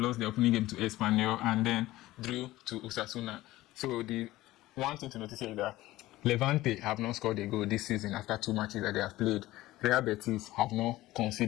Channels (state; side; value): quieter; right; 17.1 dB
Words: their opening game to Espanyol and then drew to Osasuna. So the one thing to notice here is that Levante have not scored a goal this season after 2 matches that they have played. Real Betis have not